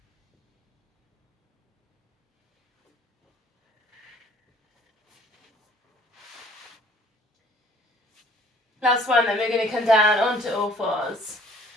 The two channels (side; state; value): both; normal; correlation 0.56